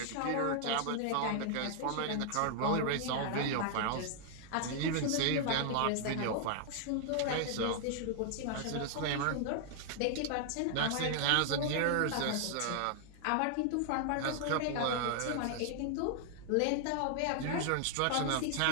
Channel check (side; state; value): both; different; correlation 0.00